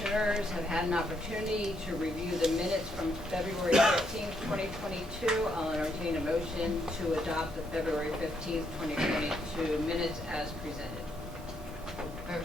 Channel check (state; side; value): normal; both; correlation 0.75